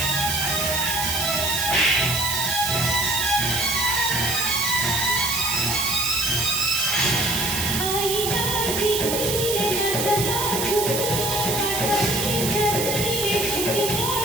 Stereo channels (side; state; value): right; noise; hiss, 1 dB below the sound